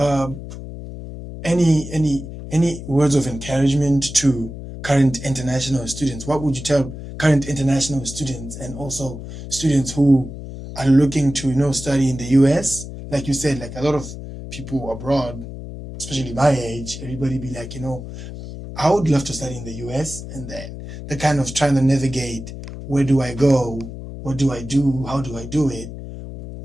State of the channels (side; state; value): left; noise; hum, 11 dB below the sound